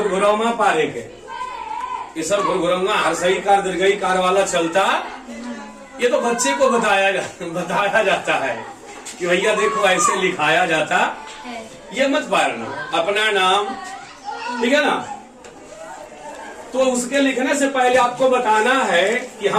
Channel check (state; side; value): identical; both; correlation 1.00